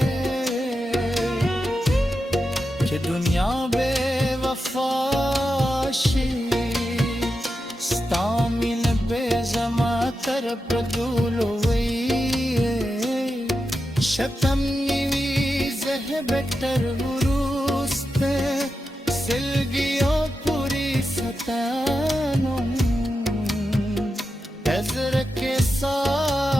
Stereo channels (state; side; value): normal; both; correlation 0.89